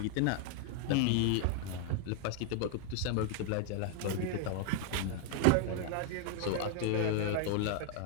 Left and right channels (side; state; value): both; different; correlation 0.00